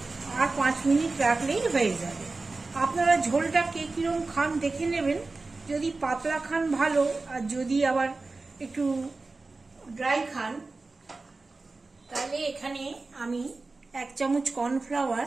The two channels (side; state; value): left; quieter; 3.6 dB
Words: আর 5 মিনিট রাখলেই হয়ে যাবে। আপনারা ঝোলটা কে কিরম খান দেখে নেবেন। যদি পাতলা খান ভালো, আর যদি আবার একটু ড্রাই খান তাহলে এখানে আমি 1 চামচ কর্নফ্লাওয়ার